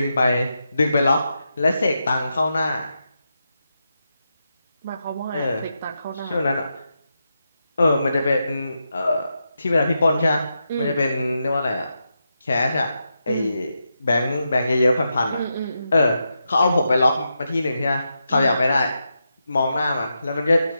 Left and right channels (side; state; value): both; inverted; correlation -0.86